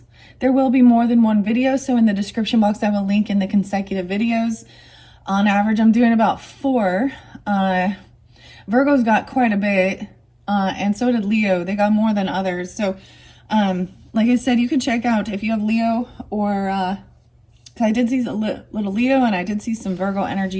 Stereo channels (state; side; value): identical; both; correlation 1.00